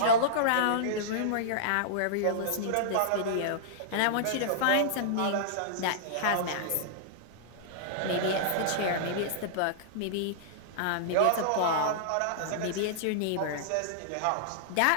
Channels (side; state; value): both; different; correlation -0.02